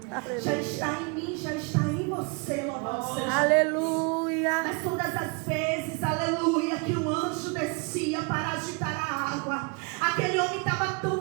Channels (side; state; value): left; quieter; 32.6 dB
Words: Aleluia. Já está em mim, já está em você. Louvado seja. Aleluia. Mas todas as vezes, aleluia, que um anjo descia para agitar a água, aquele homem estava